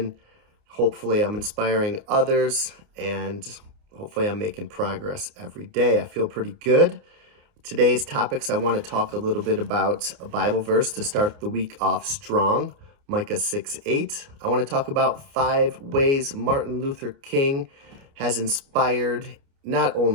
Hopefully, I'm inspiring others and hopefully, I'm making progress every day. I feel pretty good. Today's topics, I want to talk a little bit about a Bible verse to start the week off strong. Micah 6:8. I want to talk about 5 ways Martin Luther King has inspired not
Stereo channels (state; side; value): late; left; 29 ms